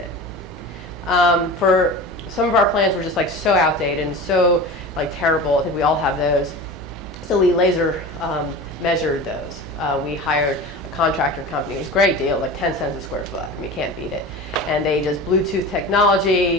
For some of our plans were just like so outdated and so like terrible. I think we all have those. So we laser measured those. We hired a contractor company. It was a great deal, like 10 cents a square foot. I mean, you can't beat it. And they just Bluetooth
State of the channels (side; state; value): both; normal; correlation 0.32